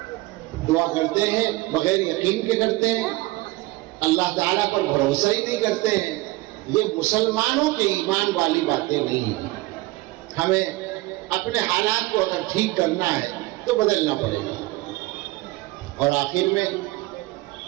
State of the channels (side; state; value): left; quieter; 20.2 dB